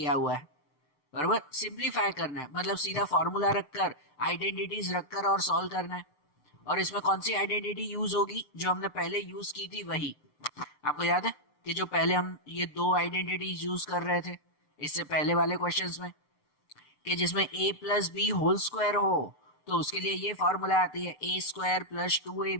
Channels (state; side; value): late; right; 6.8 ms